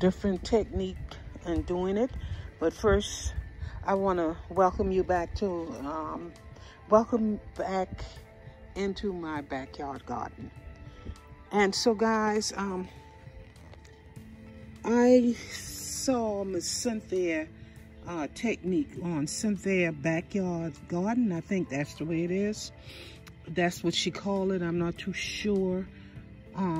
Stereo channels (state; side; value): identical; both; correlation 1.00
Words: technique in doing it. But first, I want to welcome you back to welcome back into my backyard garden. And so, guys, I saw Miss Cynthia technique on Cynthia Backyard Garden. I think that's the way it is. That's what she called it. I'm not too sure,